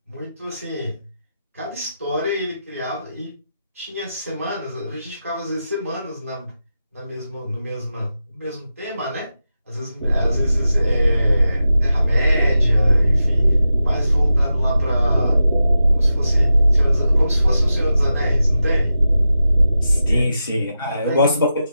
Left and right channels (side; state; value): both; inverted; correlation -0.91